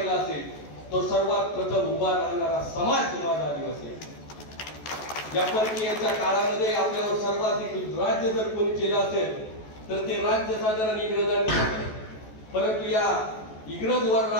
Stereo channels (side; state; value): right; late; 14 ms